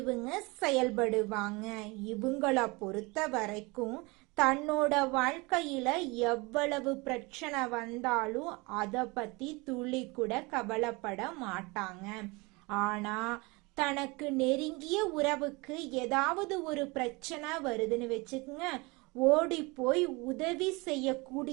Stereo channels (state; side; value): quieter; left; 25.8 dB